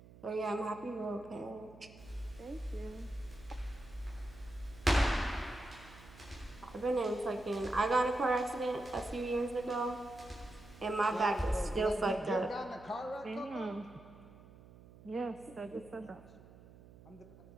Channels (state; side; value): noise; right; hum, 20 dB below the sound